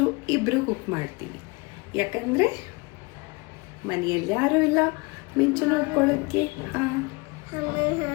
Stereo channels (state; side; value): quieter; right; 26.8 dB